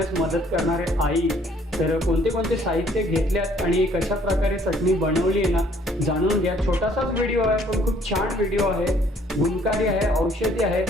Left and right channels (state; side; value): normal; both; correlation 0.61